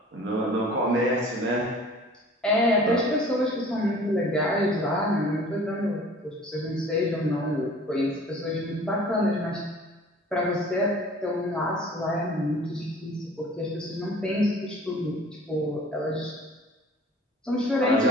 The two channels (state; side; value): normal; both; correlation 0.48